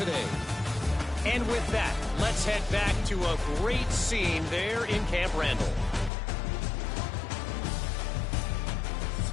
And with that, let's head back to a great scene there in Camp Randall.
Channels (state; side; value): drops out; right; at 6.1 s